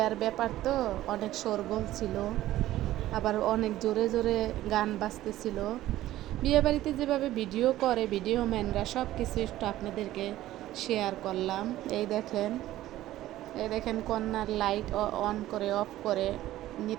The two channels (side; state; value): left; quieter; 14.7 dB